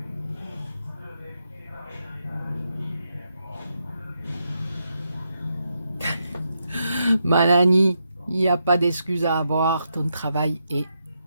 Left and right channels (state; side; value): inverted; both; correlation -0.83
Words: Manani, il n'y a pas d'excuse à avoir, ton travail est